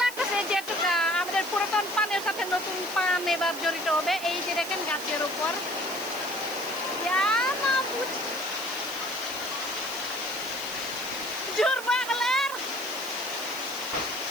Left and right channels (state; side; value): noise; left; hiss, 13 dB below the sound